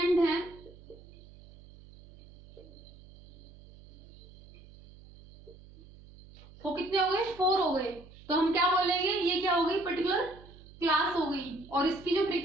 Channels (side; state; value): right; noise; hum, 21 dB below the sound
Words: हैं वो कितने हो गए, 4 हो गए. तो हम क्या बोलेंगे, ये क्या हो गई, पर्टिकुलर क्लास हो गई, और इसकी जो